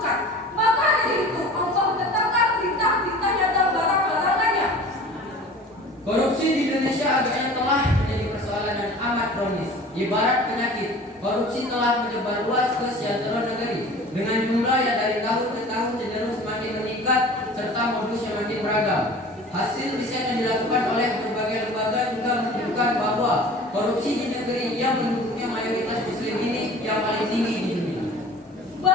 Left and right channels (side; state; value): both; normal; correlation 0.42